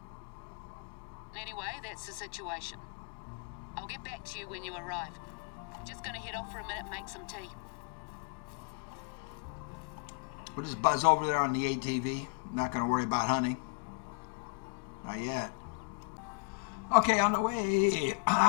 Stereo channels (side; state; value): right; quieter; 36.7 dB